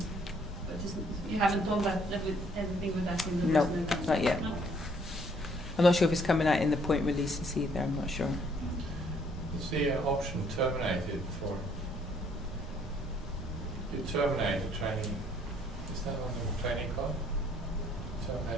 you haven't done that with anything with that in the No, personal account? not yet. No? I'm not sure if it's coming out in the point releases either, I'm not sure. You see an option terminated for, you terminate the training, is that on the training card?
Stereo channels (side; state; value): both; normal; correlation 0.64